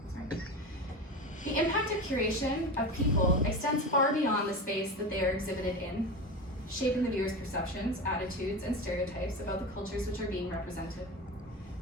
The impact of curation of people extends far beyond the space that they are exhibited in, shaping the viewer's perceptions, attitudes, and stereotypes about the cultures which are being represented.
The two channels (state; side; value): normal; both; correlation 0.25